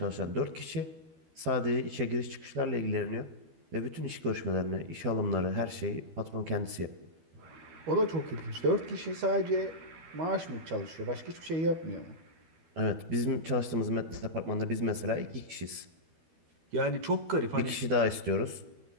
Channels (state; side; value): late; left; 12 ms